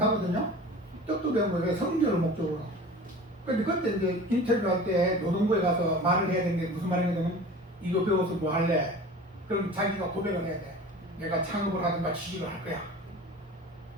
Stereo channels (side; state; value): both; normal; correlation 0.39